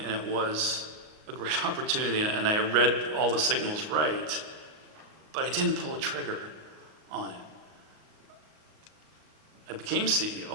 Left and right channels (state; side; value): late; left; 38 ms